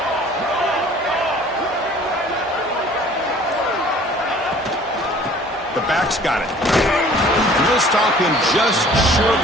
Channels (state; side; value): normal; both; correlation 0.51